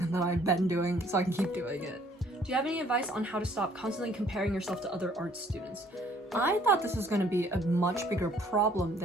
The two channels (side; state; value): both; normal; correlation 0.60